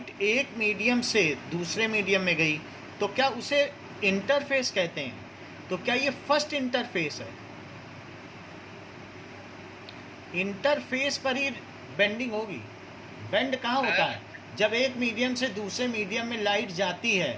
एक मीडियम से दूसरे मीडियम में गई तो क्या उसे इंटरफेस कहते हैं? तो क्या ये फर्स्ट इंटरफेस है? इंटरफेस पर ही बेंडिंग होगी। बेंड कहाँ होता है? जब एक मीडियम से दूसरे मीडियम में लाइट जाती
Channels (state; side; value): identical; both; correlation 1.00